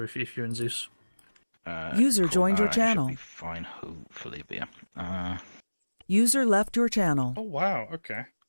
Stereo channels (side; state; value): both; inverted; correlation -1.00